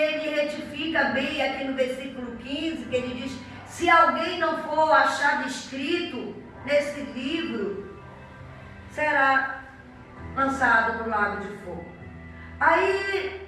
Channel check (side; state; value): both; identical; correlation 1.00